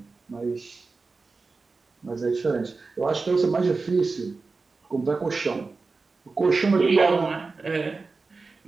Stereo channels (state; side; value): quieter; left; 4.0 dB